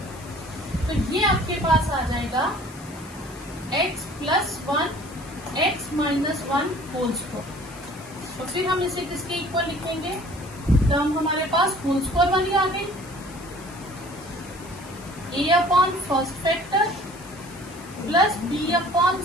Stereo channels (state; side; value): noise; left; hiss, 19 dB below the sound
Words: तो ये आपके पास आ जाएगा x plus 1 x minus 1 whole square. तो फिर हम इसे किसके इक्वल लिखेंगे, टर्म हमारे पास होल स्क्वायर वाली आ गई, a upon first factor plus b upon